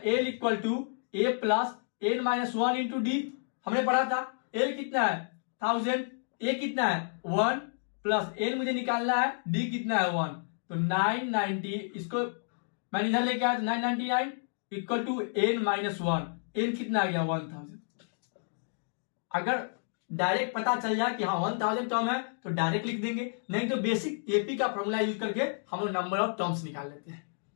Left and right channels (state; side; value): silent; right; digital silence